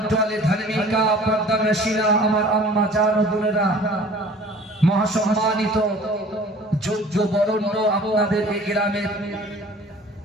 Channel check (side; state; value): both; normal; correlation 0.47